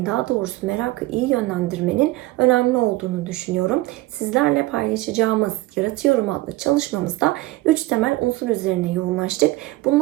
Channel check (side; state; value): left; quieter; 19.2 dB